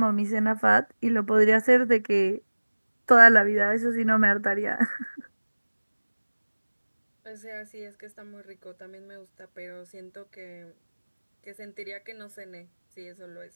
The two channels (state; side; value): inverted; both; correlation -1.00